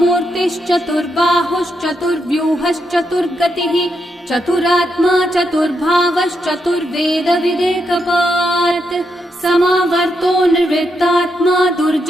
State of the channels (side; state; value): both; normal; correlation 0.82